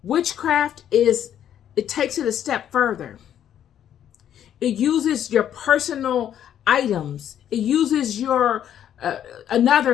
Witchcraft it takes it a step further. It uses your personal items. It uses your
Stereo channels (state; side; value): quieter; right; 10.2 dB